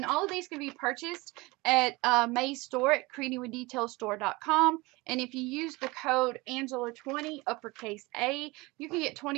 all of these can be purchased at May's store at creatingwithdetailstore.com. And if you use the code Angela20 uppercase A, you can get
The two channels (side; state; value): left; quieter; 23.3 dB